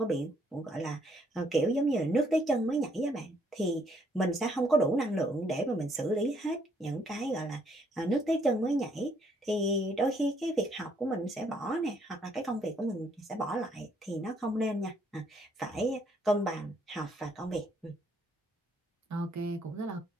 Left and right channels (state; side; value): normal; both; correlation 0.69